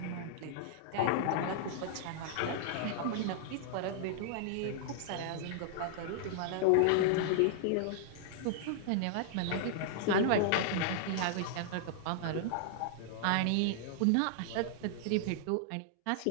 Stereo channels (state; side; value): different; both; correlation -0.01